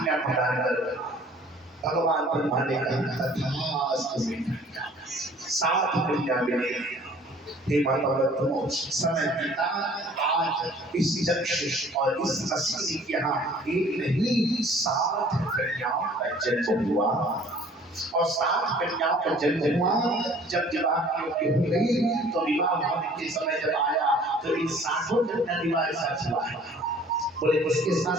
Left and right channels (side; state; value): both; normal; correlation 0.52